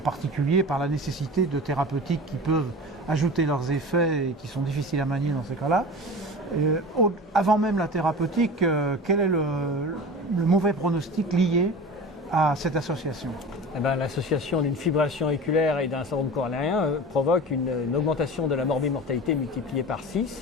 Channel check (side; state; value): both; normal; correlation 0.34